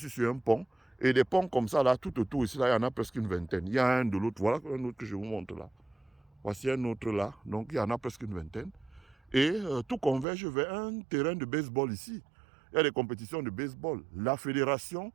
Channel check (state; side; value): drops out; left; at 10.2 s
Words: sur un pont, et des ponts comme ça là, tout autour ici, là, il y en a presque une vingtaine. Il y a un de l'autre, voilà un autre que je vous montre là. Voici un autre là, donc il y en a presque une vingtaine. Et tout converge vers un terrain de baseball ici. Il y a des compétitions de baseball. La fédération